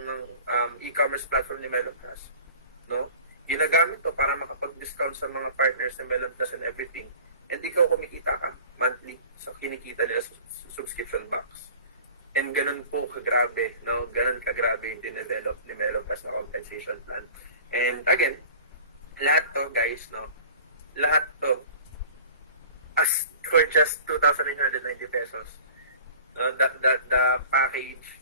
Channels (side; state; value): both; inverted; correlation -0.43